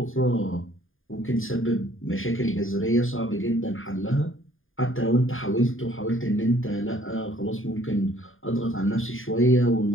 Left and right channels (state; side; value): late; right; 0.59 ms